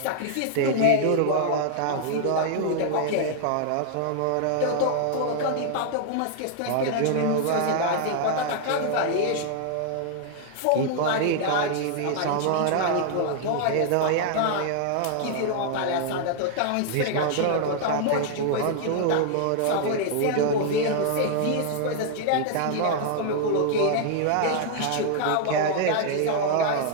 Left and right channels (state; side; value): different; both; correlation 0.00